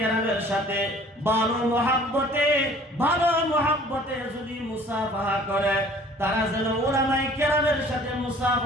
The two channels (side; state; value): both; normal; correlation 0.52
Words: সাথে ভালো মুহাব্বতে যদি মুসাফাহা করে, তারা যেন উলামায়ে কেরামের সাথে